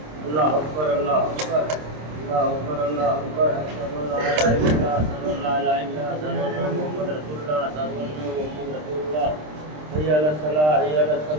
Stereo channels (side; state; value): left; late; 26 ms